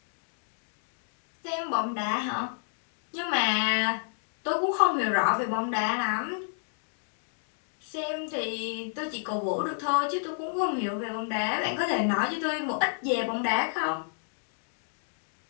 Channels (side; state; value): right; silent; digital silence